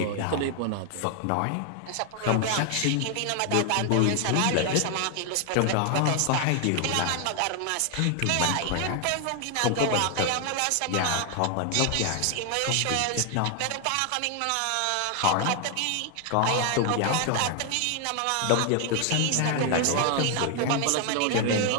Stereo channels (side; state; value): both; different; correlation 0.01